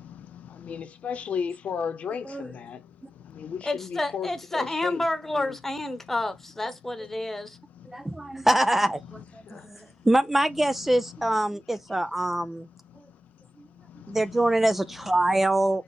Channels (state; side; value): normal; both; correlation 0.94